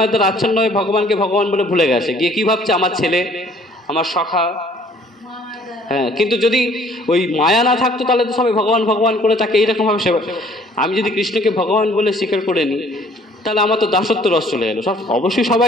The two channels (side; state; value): both; normal; correlation 0.57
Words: দ্বারা আচ্ছন্ন হয়ে ভগবানকে ভগবান বলে ভুলে গেছে, গিয়ে কি ভাবছে? আমার ছেলে, আমার সখা। হ্যাঁ, কিন্তু যদি ওই মায়া না থাকতো তাহলে তো সবাই ভগবান ভগবান করে তাকে এইরকমভাবে সেবা। আমি যদি কৃষ্ণকে ভগবান বলে স্বীকার করে নিই, তাহলে আমার তো দাসত্ব রস চলে এলো। সব অবশ্যই